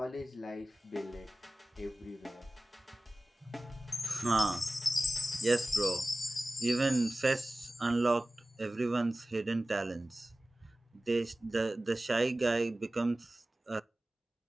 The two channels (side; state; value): both; normal; correlation 0.97